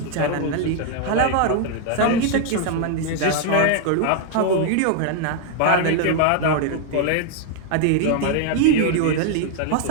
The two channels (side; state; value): both; different; correlation 0.00